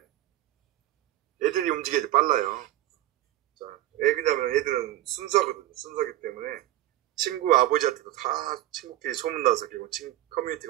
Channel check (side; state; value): left; quieter; 14.6 dB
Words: 애들이 움직여야지 빨라요. 자, 왜 그러냐면 애들은 순수하거든요. 순수하기 때문에 친구 아버지한테도 다 친구끼리 소문나서 결국